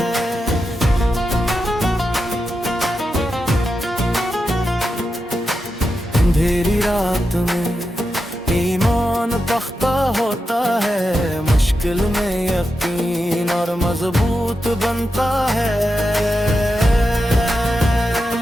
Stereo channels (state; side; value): normal; both; correlation 0.89